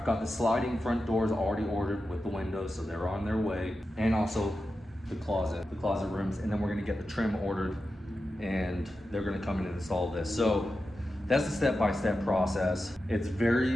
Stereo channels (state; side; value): normal; both; correlation 0.91